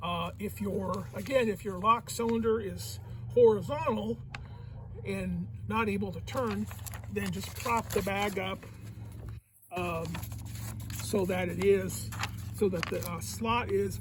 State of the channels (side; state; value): both; identical; correlation 1.00